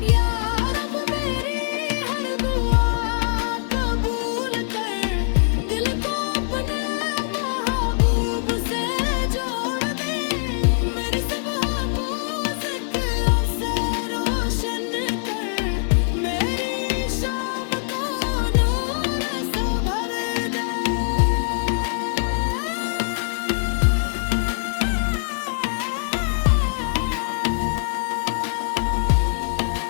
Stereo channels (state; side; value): silent; right; digital silence